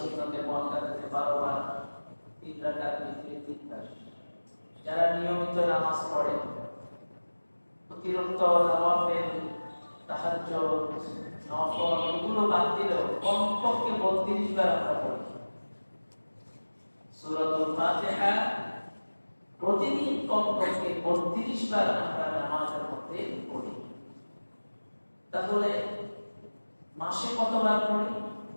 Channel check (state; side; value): inverted; both; correlation -1.00